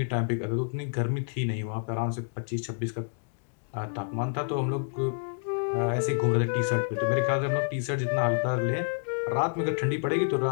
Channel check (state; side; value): silent; right; digital silence